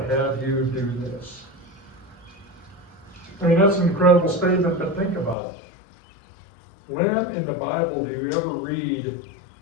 have you do this. I mean, that's an incredible statement, but think about it. When in the Bible do you ever read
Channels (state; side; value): drops out; right; at 5.4 s